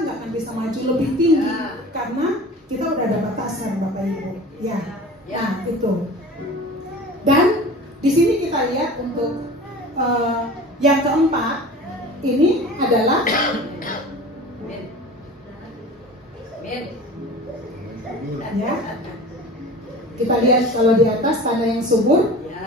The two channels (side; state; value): both; normal; correlation 0.38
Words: nggak akan bisa maju lebih tinggi karena kita udah ada batasan Bapak Ibu. Ya, nah itu. Dan di sini kita lihat untuk yang keempat ini adalah ya, kita lihat kalau di atas tanda yang subur.